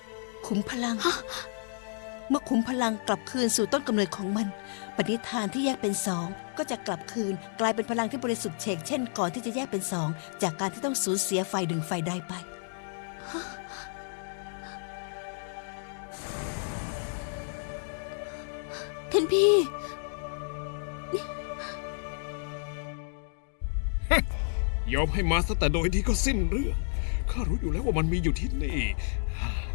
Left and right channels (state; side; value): silent; right; digital silence